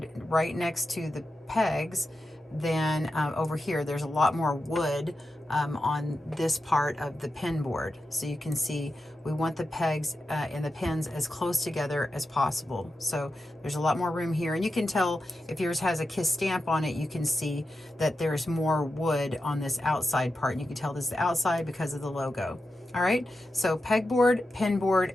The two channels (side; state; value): both; normal; correlation 0.90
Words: right next to the pegs than over here. There's a lot more wood on this part of the pin board. So you can see we want the pegs and the pins as close together as possible. So there's a lot more room here, and you can tell if yours has a kiss stamp on it, you can see that there's more wood on this outside part, and you can tell this is the outside because of the logo. All right, so pegboard, pin board,